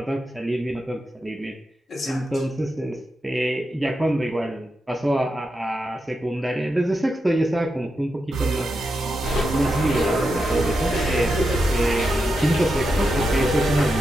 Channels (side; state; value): both; normal; correlation 0.87